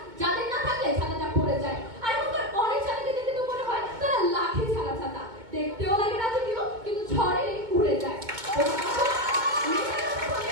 যাদের না থাকলে ছাতাটা পড়ে যায়। আর এখনকার অনেক ছাতাকে দেখে তো মনে হয় তারা লাঠি ছাড়া ছাতা, দেখতেও লাগে রাজকীয়, কিন্তু ঝড়ে উড়ে যায়।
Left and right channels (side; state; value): left; late; 2.2 ms